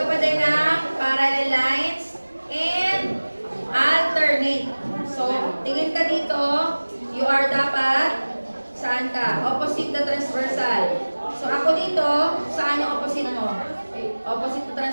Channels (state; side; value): inverted; both; correlation -1.00